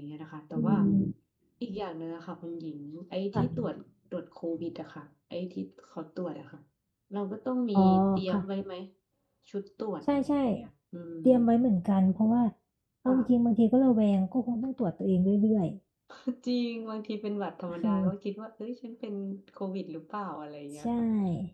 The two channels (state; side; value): identical; both; correlation 1.00